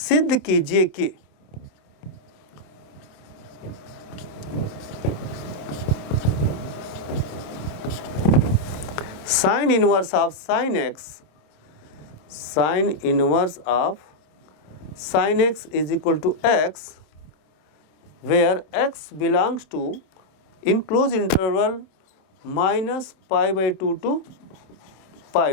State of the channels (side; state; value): right; late; 27 ms